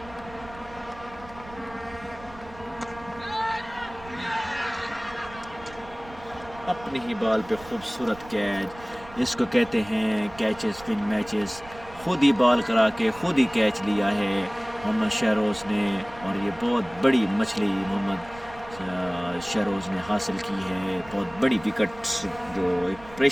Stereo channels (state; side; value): noise; right; rumble, 19 dB below the sound